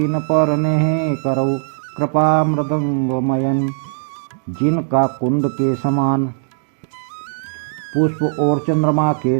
पर नेह करौ कृपा मृदंगमयन। जिनका कुंद के समान पुष्प और चंद्रमा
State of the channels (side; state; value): left; silent; digital silence